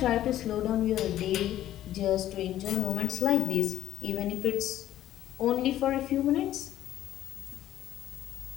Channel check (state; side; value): quieter; right; 12.8 dB